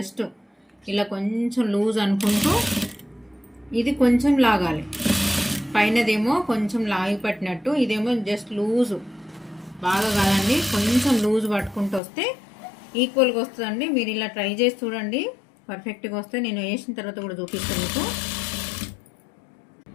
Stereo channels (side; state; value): right; drops out; at 12.0 s